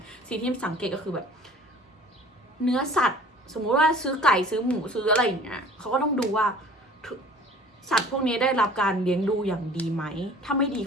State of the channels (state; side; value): normal; both; correlation 0.48